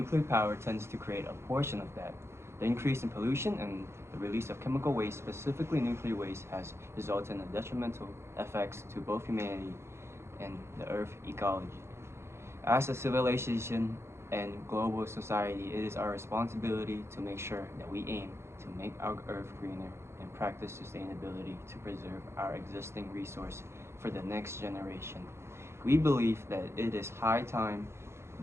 power tends to create a portion of that. The increase in pollution and the release of chemical waste, specifically nuclear waste, has resulted in detrimental effects to both humanity and the Earth ecology. As a civilization and global society, it is our responsibility to make sure that we aim to make our Earth greener and practice sustainability to preserve our existing resource for the next generation. We believe that it is high time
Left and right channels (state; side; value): late; left; 0.13 ms